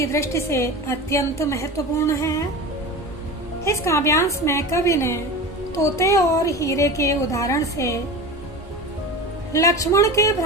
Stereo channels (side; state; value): both; normal; correlation 0.30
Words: दृष्टि से अत्यंत महत्वपूर्ण है। इस काव्यांश में कवि ने तोते और हीरे के उदाहरण से लक्ष्मण के